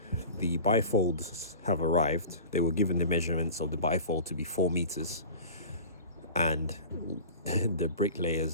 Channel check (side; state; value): both; inverted; correlation -0.38